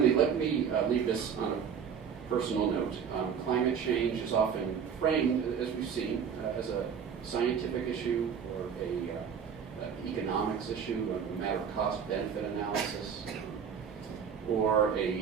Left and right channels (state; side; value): quieter; left; 7.2 dB